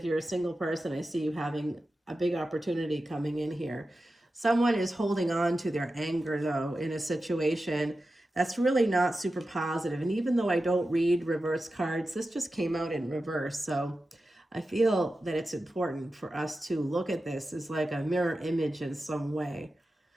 you're a single person, I see you having a big opportunity coming in here. Someone is holding on to their anger, though, in a situation that's really not super positive. And even though I don't read reverse cards, this just came out in reverse. So I feel that it's important for us to look at this as like a mirror image in some way.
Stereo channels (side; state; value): both; normal; correlation 0.92